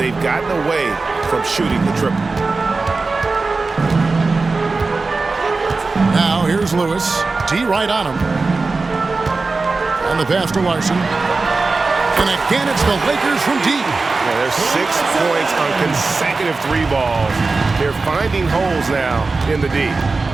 gotten away from shooting the triple. Now here's Lewis. T right on him. And the pass to Larson. And again, it's the Lakers from deep. Yeah, there's 6 points on consecutive 3 balls. They're finding holes now in the D.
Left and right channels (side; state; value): left; quieter; 3.8 dB